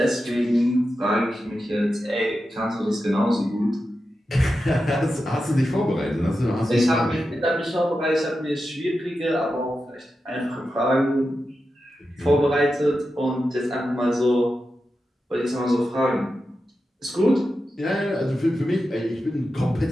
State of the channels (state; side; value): normal; both; correlation 0.90